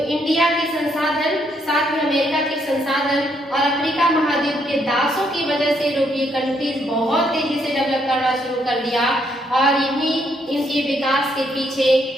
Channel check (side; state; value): both; normal; correlation 0.73